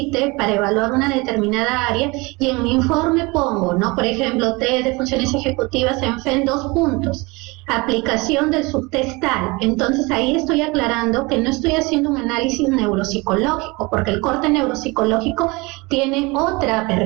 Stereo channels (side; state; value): left; quieter; 25.2 dB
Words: para evaluar una determinada área, y en mi informe pongo, ¿no? Por ejemplo, test de funciones ejecutivas ENFEM 2 puntos, aplicación del subtest tal. Entonces ahí estoy aclarando que no estoy haciendo un análisis neuropsicológico, porque el corte neuropsicológico tiene otra